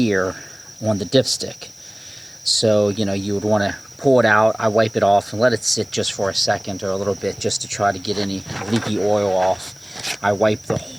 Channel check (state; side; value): noise; left; hiss, 28 dB below the sound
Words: on the dipstick. So, you would want to pull it out. I wipe it off and let it sit just for a second or a little bit just to try to get any leaky oil off. I wipe the